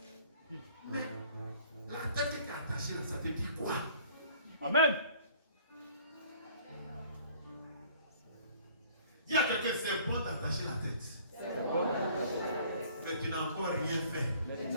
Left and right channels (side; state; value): both; inverted; correlation -0.54